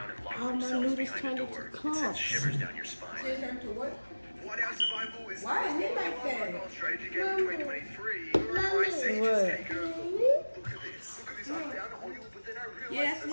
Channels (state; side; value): inverted; both; correlation -1.00